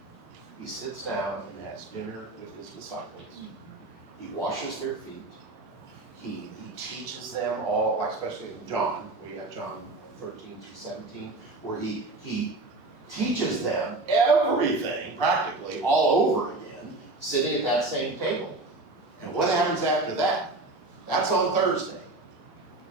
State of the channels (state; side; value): quieter; left; 3.0 dB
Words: He sits down and has dinner with his disciples. He washes their feet. He teaches them all, like especially in John, we got John 13 through 17, where he teaches them everything practically all over again, sitting at that same table. And what happens after that? That's on Thursday.